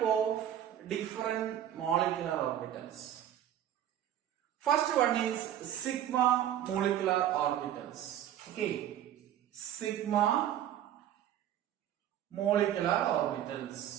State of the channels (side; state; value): left; quieter; 11.1 dB